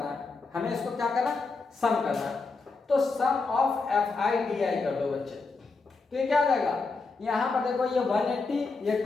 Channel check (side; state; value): right; quieter; 4.1 dB